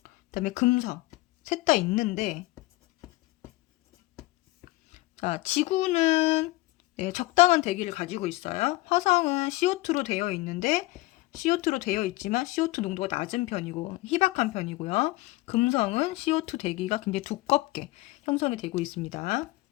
다음에 금성 셋 다 있는데, 자, 지구는 네, 적당한 대기를 가지고 있어요. 화성은 CO2로 되어 있는데, CO2로 되어 있지만 CO2 농도가 낮은 편이고 희박한 편이고요. 금성은 CO2 대기가 굉장히 두껍게 형성이 되고 있습니다.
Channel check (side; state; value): right; quieter; 20.0 dB